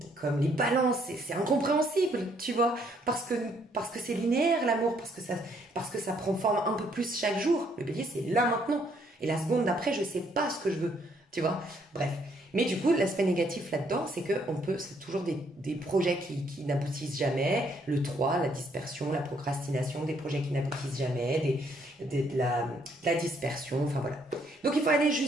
les balances, c'est incompréhensible, tu vois, parce que c'est linéaire l'amour, parce que ça prend forme un peu plus chaque jour. Le bélier, c'est là maintenant. Et la seconde d'après, je sais pas ce que je veux, tu vois. Bref. Mais du coup, l'aspect négatif là-dedans, c'est c'est toujours des projets qui n'aboutissent jamais. Le 3, la dispersion, la procrastination, des projets qui n'aboutissent jamais, de la dispersion, enfin voilà. Donc il faut aller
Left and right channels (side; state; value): both; normal; correlation 0.69